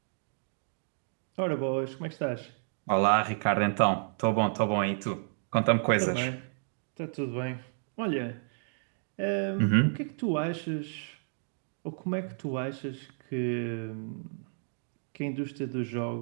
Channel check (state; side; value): silent; left; digital silence